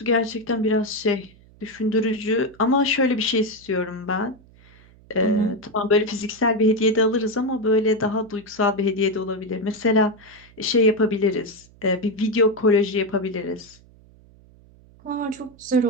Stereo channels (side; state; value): right; noise; hum, 26 dB below the sound